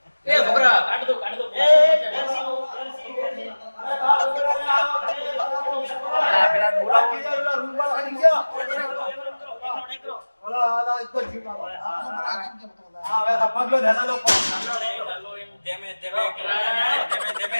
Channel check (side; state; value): both; inverted; correlation -1.00